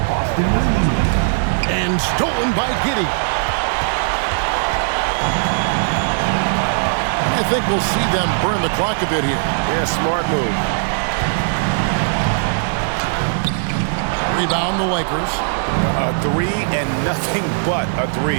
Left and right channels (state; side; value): silent; left; digital silence